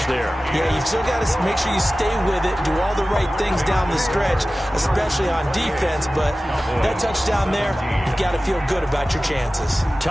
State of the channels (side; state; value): both; normal; correlation 0.96